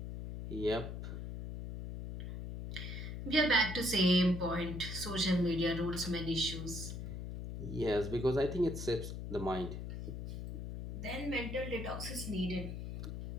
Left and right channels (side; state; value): left; noise; hum, 6 dB below the sound